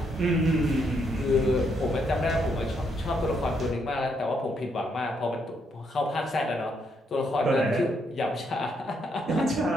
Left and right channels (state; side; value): normal; both; correlation 0.75